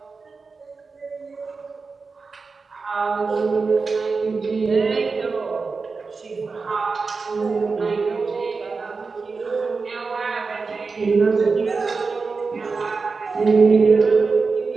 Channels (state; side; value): quieter; left; 4.5 dB